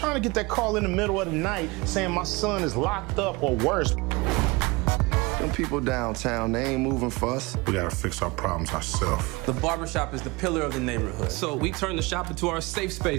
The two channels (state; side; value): quieter; left; 24.5 dB